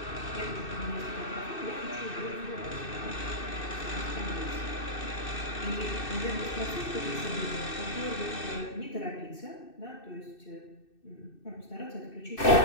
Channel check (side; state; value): right; late; 2.6 ms